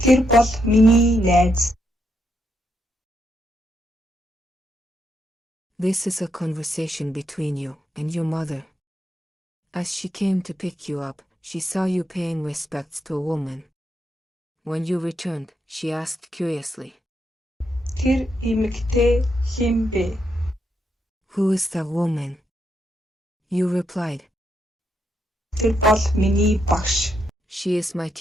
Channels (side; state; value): both; normal; correlation 0.80